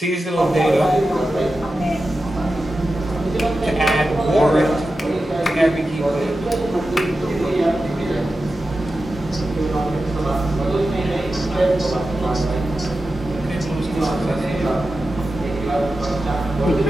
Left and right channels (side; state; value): both; normal; correlation 0.92